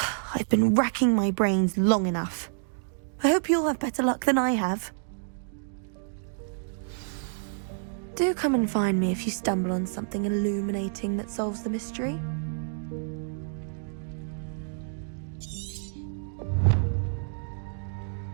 I've been racking my brains long enough. I hope you'll have better luck than I have. Do come and find me if you stumble on something illuminating that solves the mystery.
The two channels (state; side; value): silent; left; digital silence